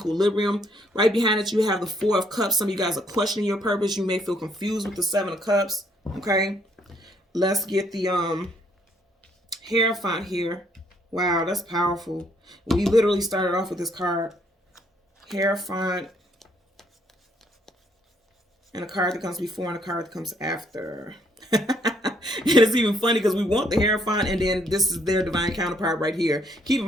Right behind it, you have the 4 of Cups. Some of you guys are questioning your purpose. You may feel confused with the 7 of Cups. Okay, let's get the Hierophant here. Wow, that's powerful. We literally started off with this card, Hierophant, and a card that comes before and a card that comes after. it's even funny because we want the Hierophant, and then this is their divine counterpart right here. Keep in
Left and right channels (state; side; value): normal; both; correlation 0.68